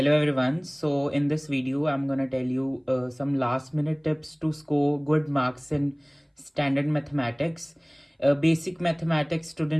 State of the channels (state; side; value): identical; both; correlation 1.00